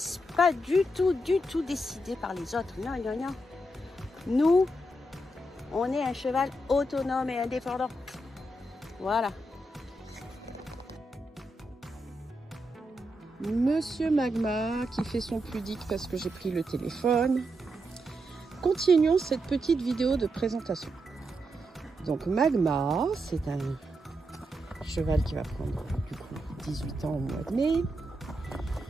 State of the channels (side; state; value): both; normal; correlation 0.84